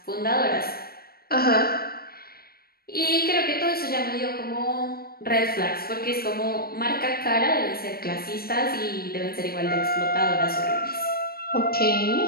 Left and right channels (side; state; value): right; late; 0.44 ms